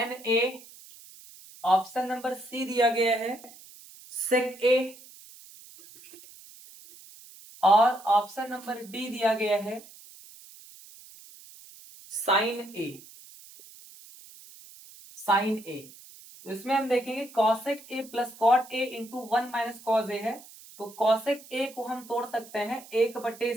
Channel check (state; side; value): noise; right; hiss, 20 dB below the sound